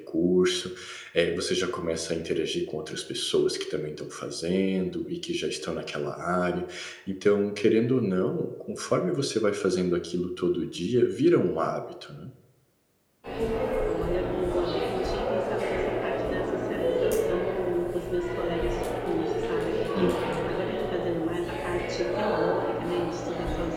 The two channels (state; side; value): identical; both; correlation 1.00